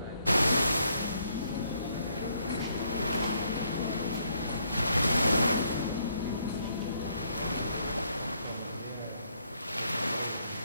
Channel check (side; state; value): both; inverted; correlation -0.71